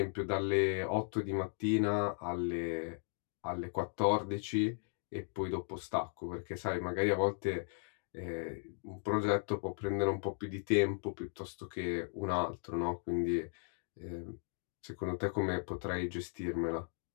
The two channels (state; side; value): silent; right; 53 dB below the other